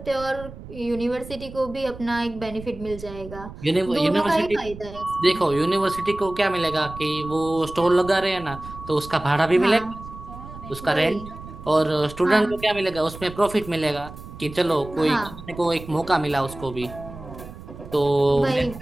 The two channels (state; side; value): noise; right; rumble, 14 dB below the sound